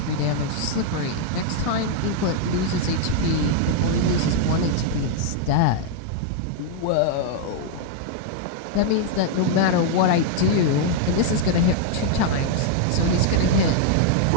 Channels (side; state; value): both; different; correlation 0.00